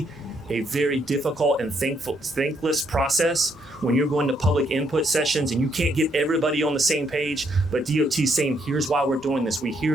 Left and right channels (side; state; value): both; normal; correlation 0.73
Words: a very difficult and thankless process when you're going to public input sessions and you can't get everybody on the same page, but DOT saying, here's why we're doing this. We